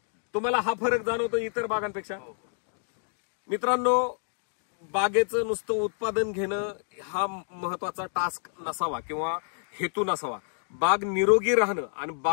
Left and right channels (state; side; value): silent; right; digital silence